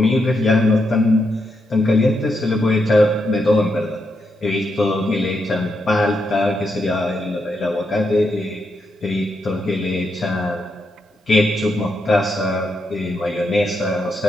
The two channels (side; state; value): both; normal; correlation 0.82